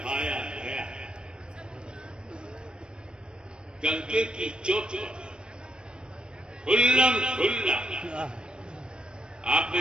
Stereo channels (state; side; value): late; left; 0.053 ms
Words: गया डंके की चोट खुल्लम खुल्ला, आप